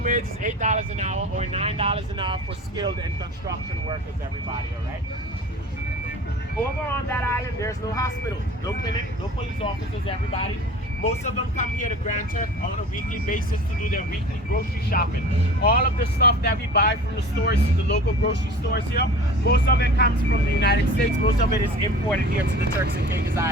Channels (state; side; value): normal; both; correlation 0.41